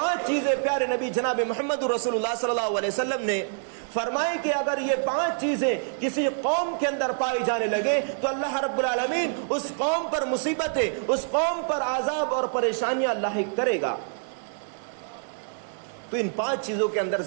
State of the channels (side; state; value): left; silent; 61 dB below the other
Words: چیزیں پیارے نبی جناب محمد رسول اللہ صلی اللہ علیہ وسلم نے فرمائی کہ اگر یہ 5 چیزیں کسی قوم کے اندر پائی جانے لگے تو اللہ رب العالمین اس قوم پر مصیبتیں, اس قوم پر عذاب اور پریشانیاں لاحق کرے گا. تو ان 5 چیزوں کے اندر